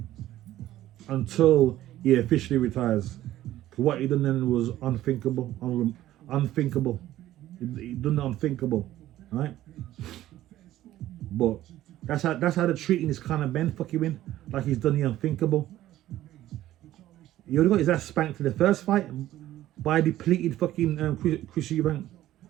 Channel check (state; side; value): quieter; left; 14.1 dB